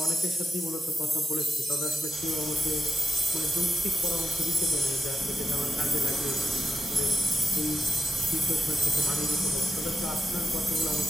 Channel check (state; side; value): normal; both; correlation 0.84